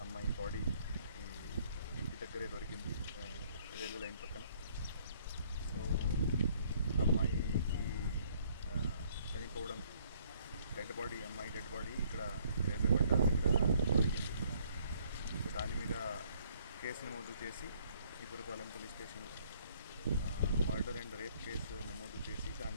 అమ్మాయి బాడీ ఇంటి దగ్గరే దొరికింది, రైల్వే లైన్ పక్కన. సో అమ్మాయికి చనిపోవడం అమ్మాయి డెడ్ బాడీ ఇక్కడ రైల్వే పట్టాల దగ్గర దొరికింది. సో దాని మీద కేసు నమోదు చేసి ఈపురపాలెం పోలీస్ స్టేషన్లో మర్డర్ అండ్ రేప్ కేసు నమోదు చేసి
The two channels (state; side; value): inverted; both; correlation -0.63